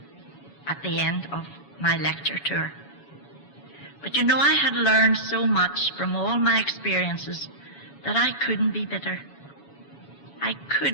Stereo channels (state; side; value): late; right; 7.1 ms